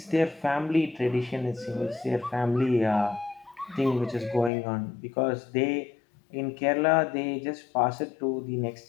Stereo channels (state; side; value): drops out; right; at 4.5 s